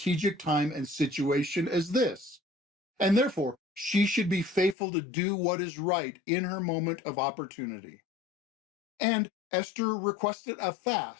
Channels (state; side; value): drops out; right; at 4.8 s